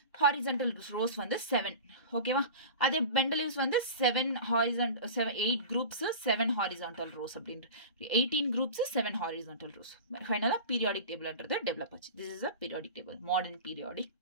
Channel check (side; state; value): both; inverted; correlation -0.33